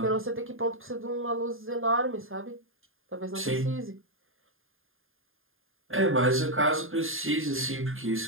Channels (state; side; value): late; left; 0.59 ms